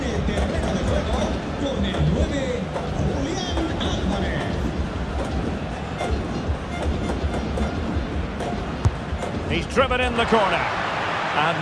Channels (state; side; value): identical; both; correlation 1.00